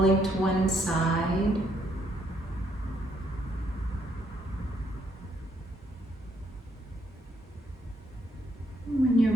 to one side. When you're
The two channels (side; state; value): both; normal; correlation 0.72